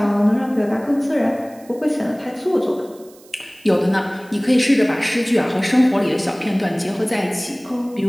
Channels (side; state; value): right; noise; hiss, 26 dB below the sound